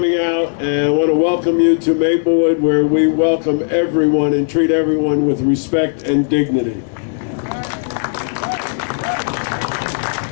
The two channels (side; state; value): right; silent; 69 dB below the other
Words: out, and I want to welcome you to Maplewood, where we welcome everyone and treat everyone with respect and dignity.